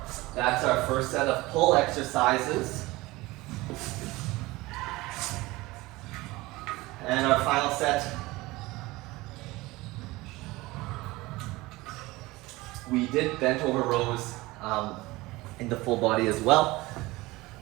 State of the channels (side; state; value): left; quieter; 20.6 dB